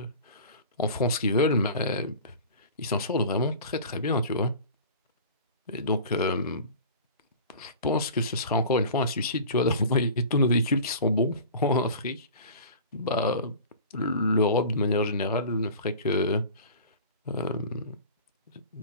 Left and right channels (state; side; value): inverted; both; correlation -0.39